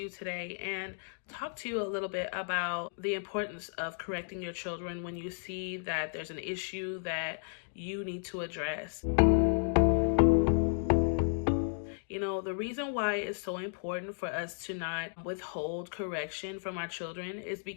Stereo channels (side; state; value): right; silent; digital silence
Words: you today and talk to you a little bit about the importance of correcting your children when you see that there's an issue that you need to address. The reason why it's so important for us to not withhold correction from our children is